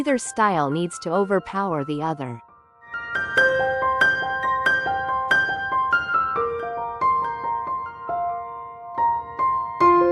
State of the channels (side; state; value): both; identical; correlation 1.00